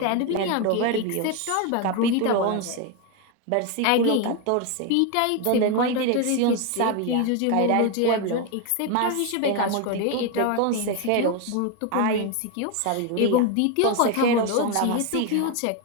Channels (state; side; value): different; both; correlation 0.02